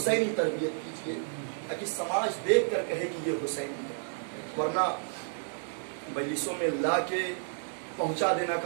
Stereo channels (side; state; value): left; silent; digital silence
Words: تربیت کیجیے تاکہ سماج دیکھ کر کہے کہ یہ حسینی ہے، ورنہ مجلسوں میں لا کے پہنچا دینا